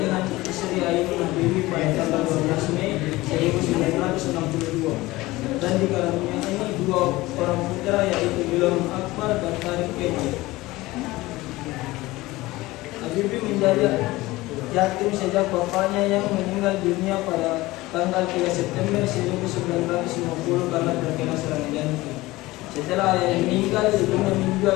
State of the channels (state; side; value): quieter; right; 19.4 dB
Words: istri Ainun Habibie pada tanggal 12 Mei 1962 dan dikaruniai 2 orang putra yaitu Ilham Akbar dan Tarik Kemal. Habibie menjadi yatim sejak bapaknya yang meninggal dunia pada tanggal 3 September 1950 karena terkena serangan jantung. Setelah ayahnya meninggal, ibunya